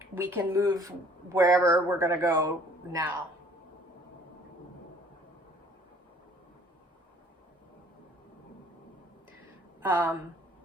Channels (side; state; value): both; normal; correlation 0.56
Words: we can move wherever we're going to go now. And